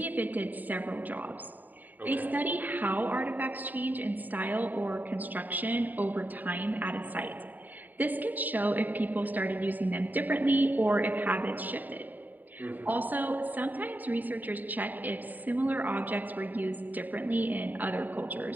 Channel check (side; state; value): left; late; 0.086 ms